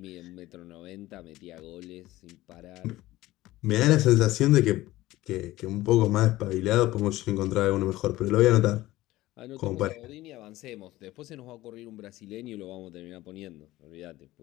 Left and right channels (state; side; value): quieter; right; 17.0 dB